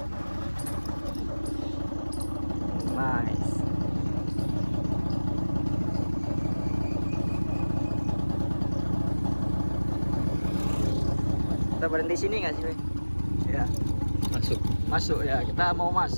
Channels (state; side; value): inverted; both; correlation -1.00